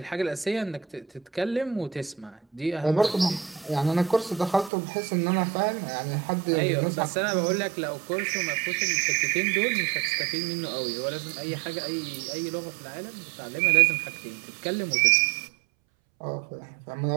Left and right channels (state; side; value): drops out; left; at 4.7 s